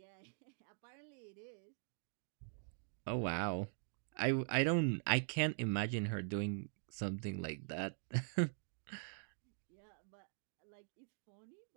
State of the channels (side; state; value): left; silent; digital silence